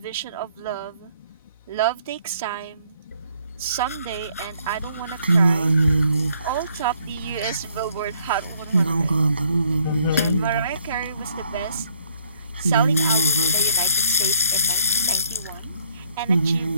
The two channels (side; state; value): both; inverted; correlation -0.66